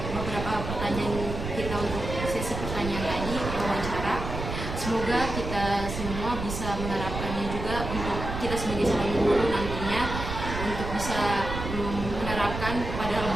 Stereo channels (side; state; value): right; noise; rumble, 6 dB below the sound